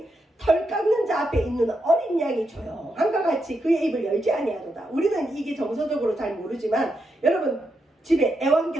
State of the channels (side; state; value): both; normal; correlation 0.83